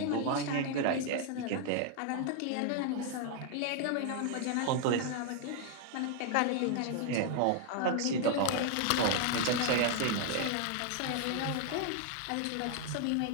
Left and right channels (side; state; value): both; different; correlation 0.00